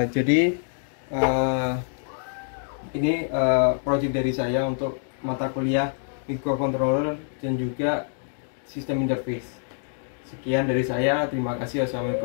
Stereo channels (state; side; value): silent; right; digital silence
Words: Jadi ini project dari saya untuk mata kuliah microcontroller dan juga sistem interface. Sekian dari saya, terima kasih.